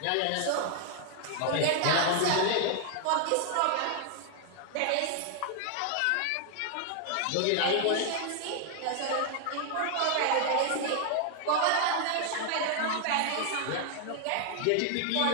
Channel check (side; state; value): both; different; correlation 0.00